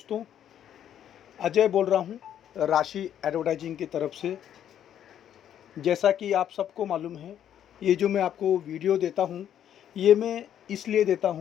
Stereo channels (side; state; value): right; quieter; 10.1 dB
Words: अजय बोल रहा हूँ राशि एडवर्टाइजिंग की तरफ से। जैसा कि आप सबको मालूम है, ये जो मैं आपको वीडियो देता हूँ, ये मैं इसलिए देता